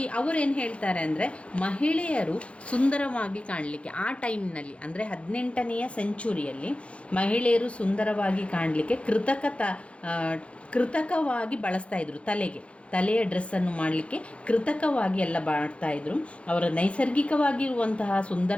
ಅವರು ಏನು ಹೇಳ್ತಾರೆ ಅಂದರೆ, ಮಹಿಳೆಯರು ಸುಂದರವಾಗಿ ಕಾಣಲಿಕ್ಕೆ ಆ ಟೈಮ್ನಲ್ಲಿ, ಅಂದರೆ 18ನೇ ಸೆಂಚುರಿಯಲ್ಲಿ ಮಹಿಳೆಯರು ಸುಂದರವಾಗಿ ಕಾಣಲಿಕ್ಕೆ ಕೃತಕವಾಗಿ ಬಳಸ್ತಾ ಇದ್ರು. ತಲೆಯ ಡ್ರೆಸ್ಸನ್ನು ಮಾಡಲಿಕ್ಕೆ ಕೃತಕವಾಗಿ ಎಲ್ಲ ಮಾಡ್ತಾಯಿದ್ರು. ಅವರ ನೈಸರ್ಗಿಕವಾಗಿರುವಂತಹ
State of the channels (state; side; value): late; right; 0.061 ms